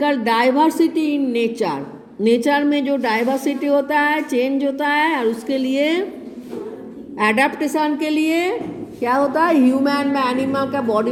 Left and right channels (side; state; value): both; identical; correlation 1.00